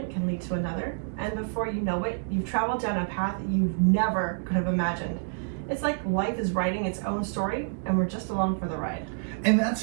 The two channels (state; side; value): silent; left; digital silence